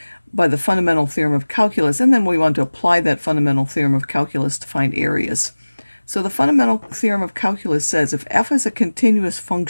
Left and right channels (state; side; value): inverted; both; correlation -1.00